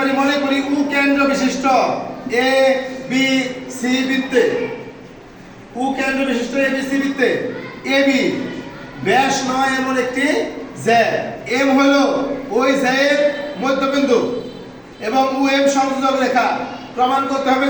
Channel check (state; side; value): identical; both; correlation 1.00